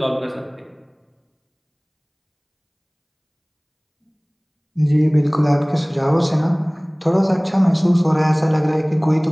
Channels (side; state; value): both; identical; correlation 1.00